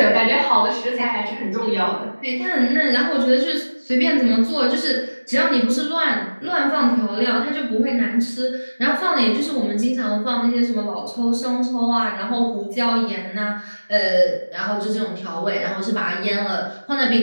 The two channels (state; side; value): inverted; both; correlation -1.00